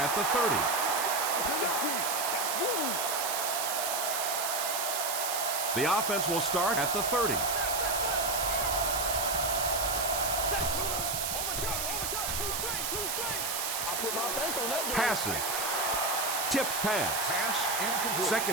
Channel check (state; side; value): noise; right; hiss, 1 dB below the sound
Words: at the 30. The offense will start at the 30. Passes. Tipped pass.